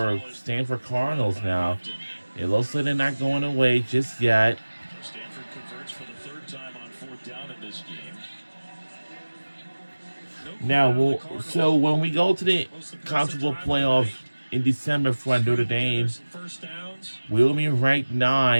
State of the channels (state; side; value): inverted; both; correlation -1.00